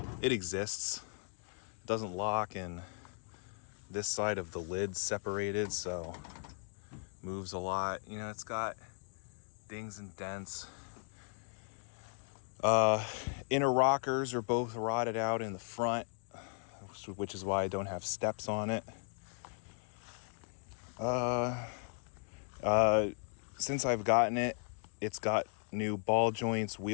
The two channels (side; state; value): right; silent; 53 dB below the other